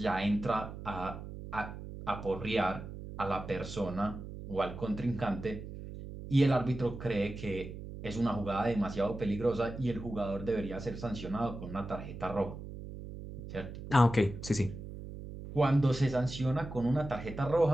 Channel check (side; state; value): right; noise; hum, 10 dB below the sound